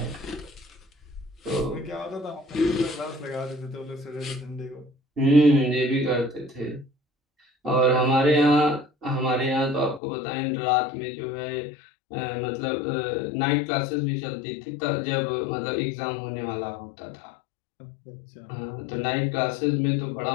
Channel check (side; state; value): right; drops out; at 10.0 s